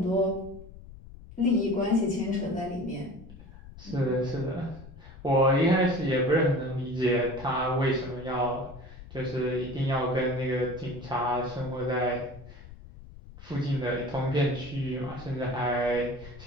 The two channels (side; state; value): left; noise; rumble, 17 dB below the sound